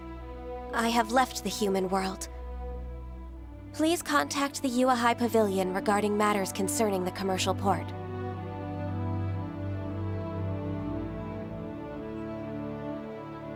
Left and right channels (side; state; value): both; identical; correlation 1.00